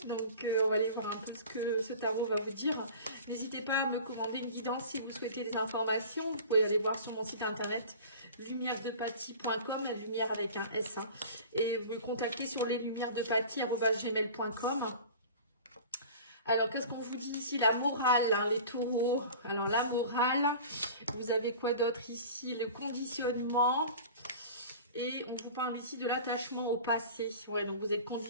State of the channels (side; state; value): both; inverted; correlation -0.39